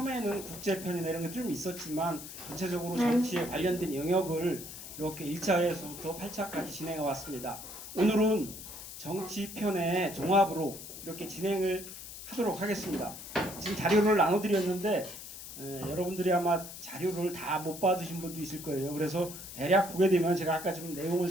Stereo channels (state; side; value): noise; left; hiss, 12 dB below the sound